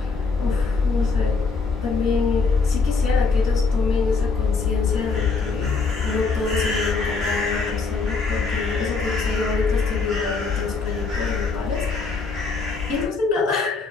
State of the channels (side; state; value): right; quieter; 4.4 dB